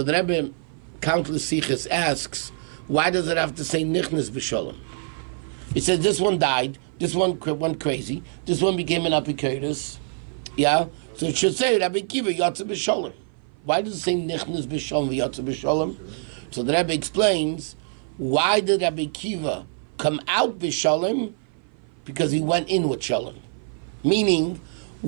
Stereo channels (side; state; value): left; silent; 57 dB below the other